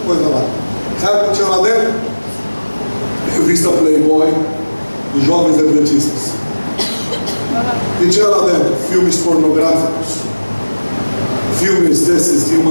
coisa lá. Sabe o que tinha lá dentro? Revista Playboy dos jovens adventistas. E tinha lá dentro filmes pornográficos, filmes desses de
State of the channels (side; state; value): both; inverted; correlation -1.00